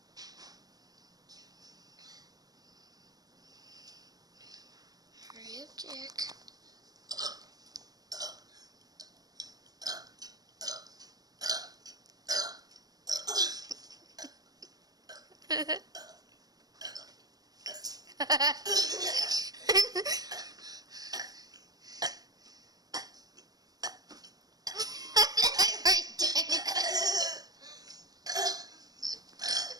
Hurry up, Jack.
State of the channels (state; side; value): late; left; 0.19 ms